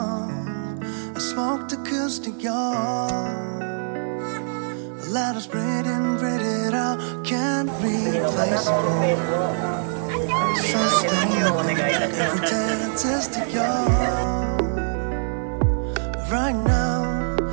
I smoked acoustic, your let us breathe in, breathe it out. Can't replace it. Sustainable. Every day artistic, your right now.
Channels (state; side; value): silent; left; 63 dB below the other